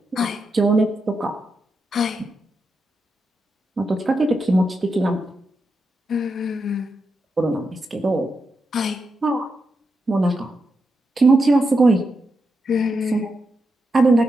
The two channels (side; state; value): both; normal; correlation 0.86